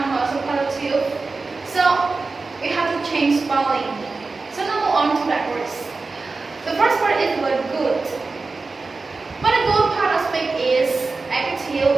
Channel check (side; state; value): left; quieter; 3.9 dB